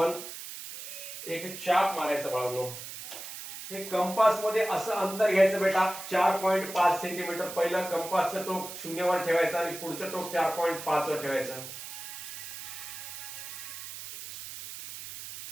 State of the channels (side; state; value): right; noise; hiss, 10 dB below the sound